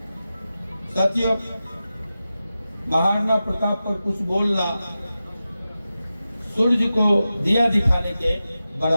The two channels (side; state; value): both; inverted; correlation -0.93